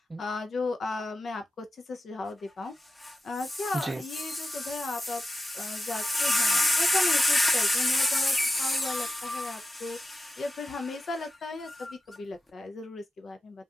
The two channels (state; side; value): normal; both; correlation 0.91